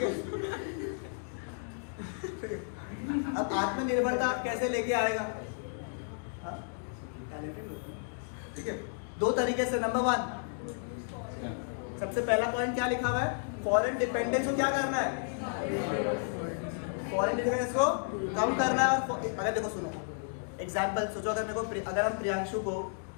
है। अब आत्मनिर्भरता आप कैसे लेके आएगा, हाँ, टैलेंटेड लोग, ठीक है। 2 तरीके से, नंबर 1 सबसे पहला पॉइंट क्या लिखा हुआ है, फॉरेन डिपेंडेंस को क्या करना है, फॉरेन डिपेंडेंस को कम करना है। अगर देखो सुनो एग्जाम्पल सोचो, अगर हम प्रियांशु को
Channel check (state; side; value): silent; right; digital silence